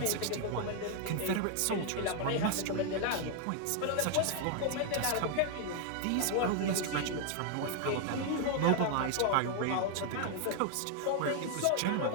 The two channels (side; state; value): both; different; correlation 0.00